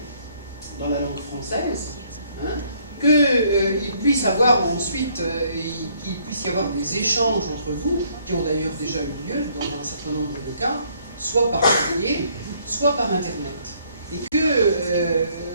française, qu'il puisse avoir ensuite, qu'il puisse y avoir des échanges entre vous, qui ont d'ailleurs déjà eu lieu dans un certain nombre de cas, soit par courrier, soit par Internet. Et que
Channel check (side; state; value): both; inverted; correlation -0.65